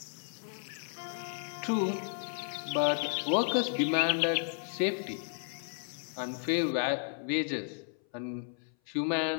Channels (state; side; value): silent; right; 56 dB below the other